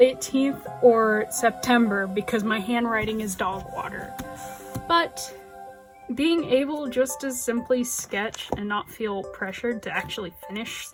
or September because my handwriting is dog water. But being able just to simply sketch and not feel pressured to actually finish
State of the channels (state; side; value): identical; both; correlation 1.00